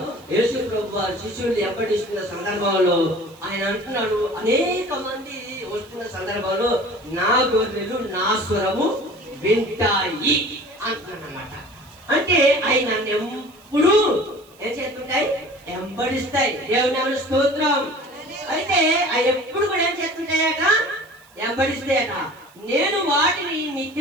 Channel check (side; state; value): right; noise; hiss, 28 dB below the sound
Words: యేసు ప్రభు వారు శిష్యులు వెంబడిస్తున్న సందర్భంలో ఆయన అంటున్నాడు, అనేక మంది వస్తున్న సందర్భంలో నా గొర్రెలు నా స్వరము వింటాయి అంటున్నాడు అన్నమాట. అంటే అవి నన్ను ఎప్పుడు ఏం చేస్తుంటాయి? వెంబడిస్తాయి. దేవుని నామమున స్తోత్రం. అయితే అవి ఎప్పుడు కూడా ఏం చేస్తుంటాయట? వెంబడిస్తాయట. నేను వాటిని